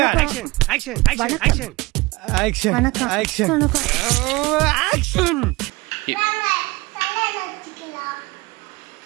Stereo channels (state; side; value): quieter; left; 22.4 dB